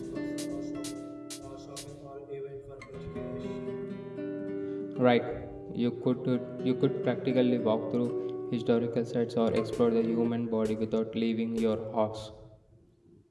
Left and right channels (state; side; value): identical; both; correlation 1.00